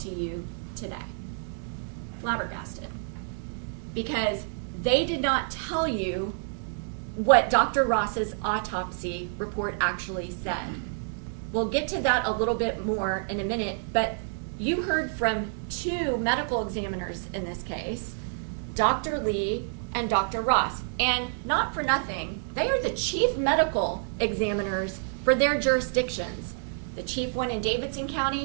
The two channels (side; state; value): left; silent; digital silence